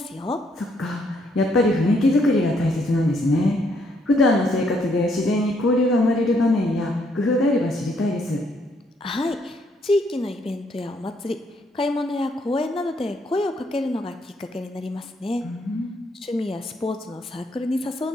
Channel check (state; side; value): normal; both; correlation 0.71